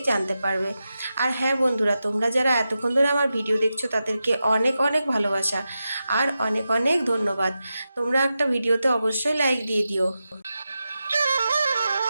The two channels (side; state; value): both; inverted; correlation -0.91